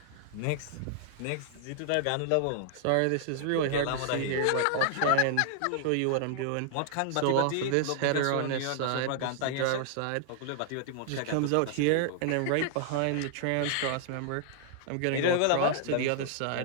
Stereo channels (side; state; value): both; different; correlation -0.01